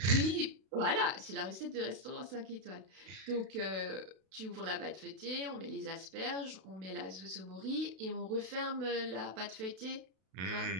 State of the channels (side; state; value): left; late; 32 ms